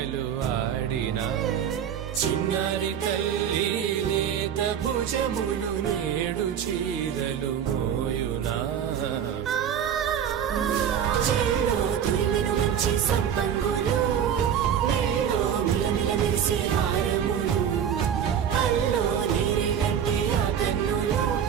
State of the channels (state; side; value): quieter; left; 8.7 dB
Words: ఆడినా చిన్నారి తల్లి లేత భుజములు నేడు చీరలు మోయునా చెల్లో తురిమిన మంచి సంపంగులు మెల్లో మిలమిల మెరిసే హారములు అల్లో నీరెలంటే ఆ కన్నులు